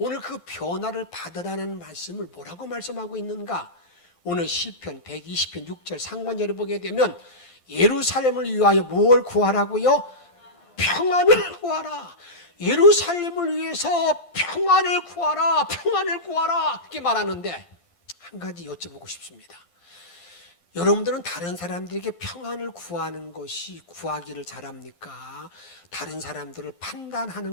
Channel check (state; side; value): late; right; 12 ms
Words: 그 변화를 받으라는 말씀을 뭐라고 말씀하고 있는가? 오늘 시편 120편 6절 상반절을 보게 되면 예루살렘을 위하여 뭘 구하라고요? 평안을 구하라. 예루살렘을 위해서 평안을 구하라. 그렇게 말하는데 한 가지 여쭤보고 싶습니다. 여러분들은 다른 사람들에게 평안을 구하는 것이 구하기를 잘합니까? 다른 사람들을